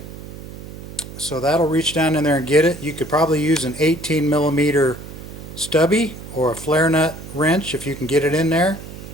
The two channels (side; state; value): right; noise; hum, 13 dB below the sound